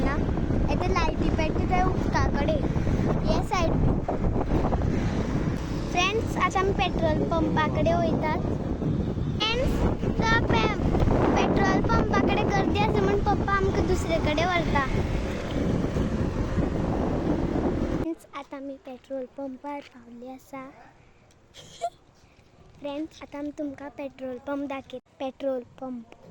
येते लायटी पेट्टा थंय उदका कडेन हे सायड. फ्रेंड्स, आतां आमी पेट्रोल पंपा कडेन वयतात. पेट्रोल पंपा कडेन गर्दी आसा म्हूण पप्पा आमकां दुसरे कडेन व्हरता. आतां आमी पेट्रोल पंपार पावली आसा. फ्रेंड्स, आतां आमी तुमकां पेट्रोल पंप दाखयता. Petrol pump.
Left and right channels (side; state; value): both; identical; correlation 1.00